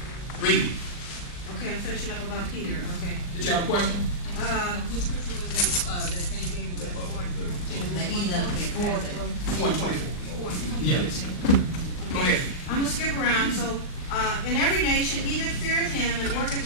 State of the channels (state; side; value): late; right; 39 ms